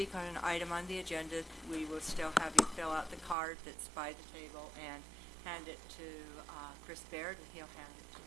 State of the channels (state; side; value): drops out; left; at 3.4 s